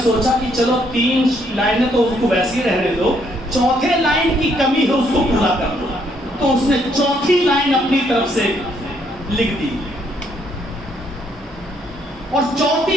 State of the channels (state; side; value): normal; both; correlation 0.70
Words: سوچا کہ چلو 3 لائنیں تو اس کو ویسے ہی رہنے دو، چوتھے لائن کی کمی ہے اس کو پورا کر دو، تو اس نے چوتھی لائن اپنی طرف سے لکھ دی، اور